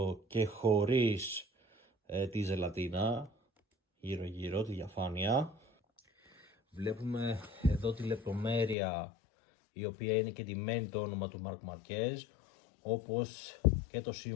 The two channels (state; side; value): drops out; right; at 8.8 s